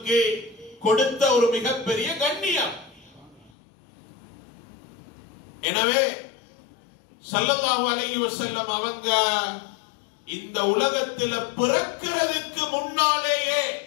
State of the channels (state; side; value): drops out; right; at 3.5 s